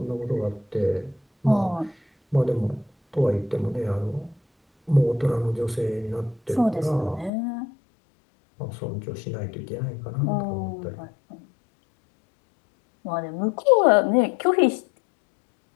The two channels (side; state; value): right; drops out; at 7.3 s